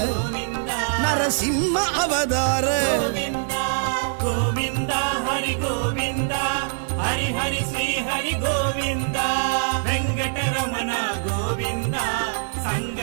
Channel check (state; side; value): silent; left; digital silence